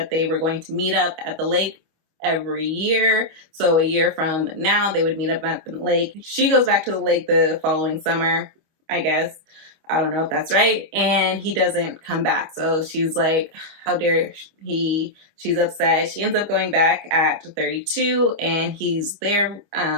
they were going to meet up at the lake every year. So a year from now, they would meet up at the lake. She goes back to the lake the following summer, I guess. I don't know if that's right. And he doesn't come back. So she's like, how dare he? She's upset. She ends up going back at 32, and he's there.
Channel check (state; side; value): late; left; 25 ms